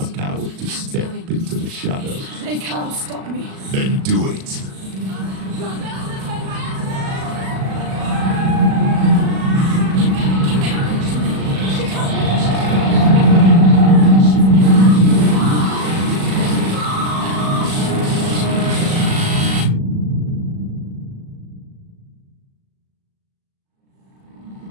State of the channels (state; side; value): late; left; 37 ms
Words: coward to step into the shadows? They can't stop me. Then do it!